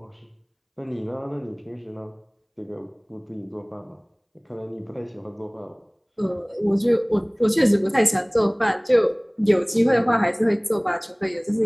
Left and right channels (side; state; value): both; identical; correlation 1.00